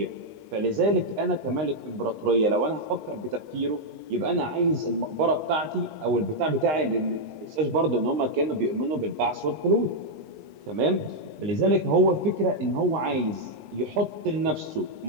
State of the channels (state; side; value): late; left; 20 ms